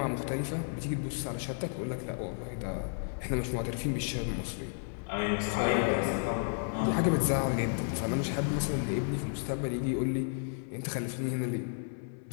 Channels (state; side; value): silent; right; 56 dB below the other